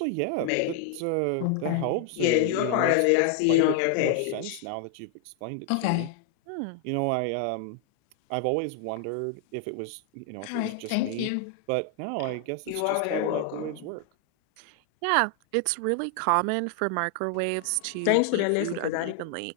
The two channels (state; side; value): different; both; correlation 0.00